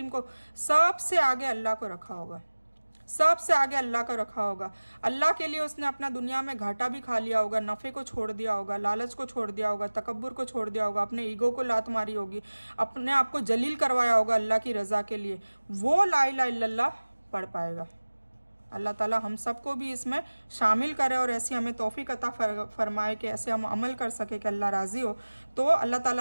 को, सबसे आगे अल्लाह को रखा होगा, सबसे आगे अल्लाह का रखा होगा। अल्लाह के लिए उसने अपना दुनिया में घाटा भी खा लिया होगा, नफ़े को छोड़ दिया होगा, लालच को छोड़ दिया होगा, तकब्बुर को छोड़ दिया होगा, अपने ईगो को लात मारी होगी, अपने आप को जलील करवाया होगा अल्लाह की रज़ा के लिए, वो ला इलाहा इल्लल्लाह पढ़ पाएगा। अल्लाह ताला हम सबको भी इसमें शामिल करे और ऐसी हमें तौफीक अता फरमाए कि ऐसे हम अमल कर सके कि अल्लाह राज़ी हो। तो अल्लाह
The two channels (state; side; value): inverted; both; correlation -1.00